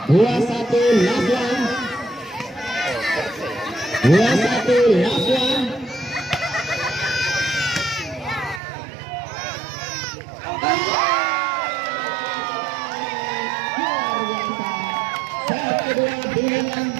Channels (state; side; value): drops out; left; at 8.6 s